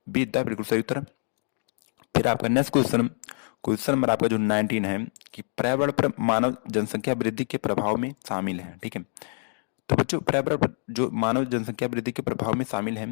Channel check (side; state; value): right; silent; 61 dB below the other